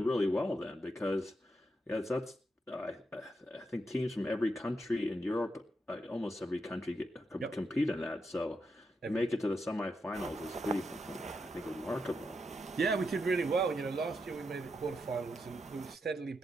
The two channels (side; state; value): both; normal; correlation 0.84